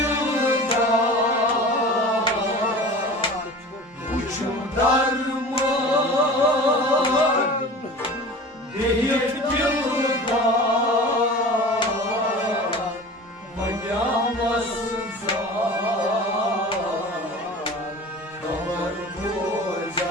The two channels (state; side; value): normal; both; correlation 0.38